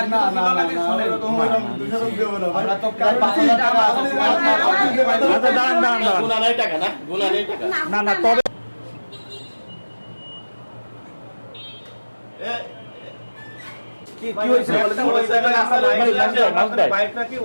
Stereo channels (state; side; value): inverted; both; correlation -1.00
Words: ছিল না নাকি না শুনেন এরকম এরকম দুশো দেব না ভাই আমরা তো প্রায় 5000 টাকা আছে আচ্ছা দাঁড়ান দাঁড়ান দাঁড়ান গুণা নাই টাকা না? গুণা নেই টাকা। না না তবে কি হয়েছিল বলেন তো? ওই জায়গায় আমার বাইকটা কি